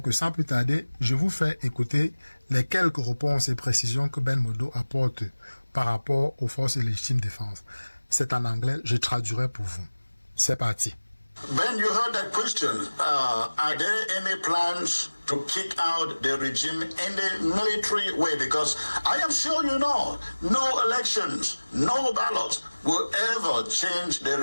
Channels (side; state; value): both; inverted; correlation -1.00